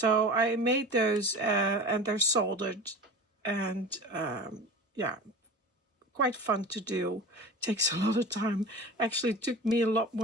I made those and they're soldered, and yeah, quite fun to do. Takes a lot of time. Actually, it took me a lot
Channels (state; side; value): normal; both; correlation 0.35